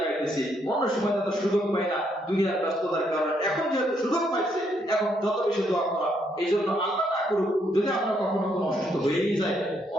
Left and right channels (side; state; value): both; normal; correlation 0.74